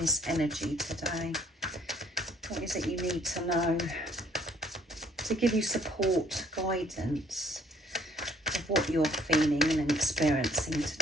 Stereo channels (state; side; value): normal; both; correlation 0.60